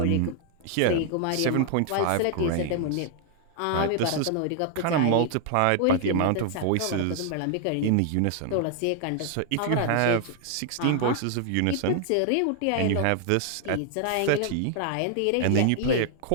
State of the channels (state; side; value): different; both; correlation 0.00